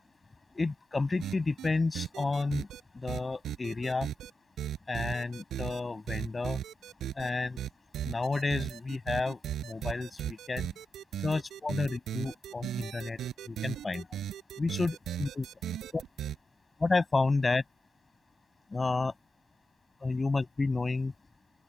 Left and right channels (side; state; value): both; normal; correlation 0.90